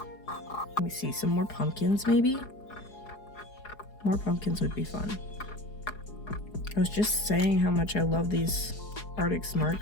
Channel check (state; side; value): late; right; 4.8 ms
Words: Let me see, some more pumpkins maybe? More pumpkins would be fun. I was just saying how much I love these Artix